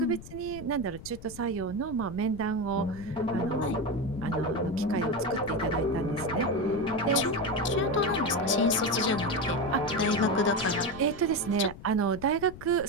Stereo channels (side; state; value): left; noise; rumble, 15 dB below the sound